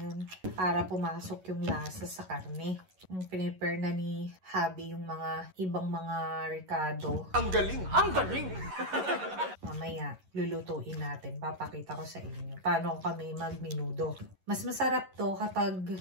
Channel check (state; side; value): late; left; 11 ms